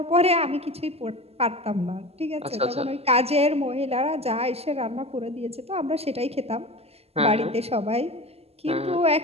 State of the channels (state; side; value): late; left; 0.29 ms